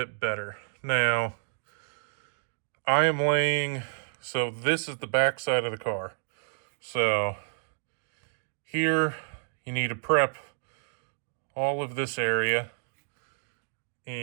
better. Now, I am laying, so this is the back side of the car. So here you need to prep all of this area,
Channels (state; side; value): silent; left; digital silence